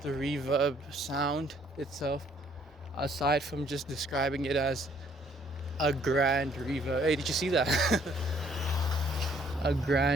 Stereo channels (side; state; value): both; normal; correlation 0.64